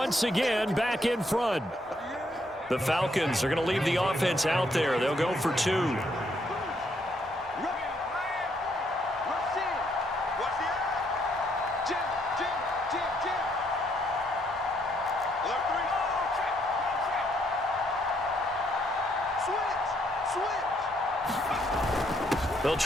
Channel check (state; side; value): normal; both; correlation 0.72